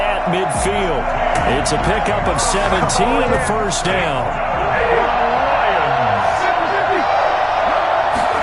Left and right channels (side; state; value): both; identical; correlation 1.00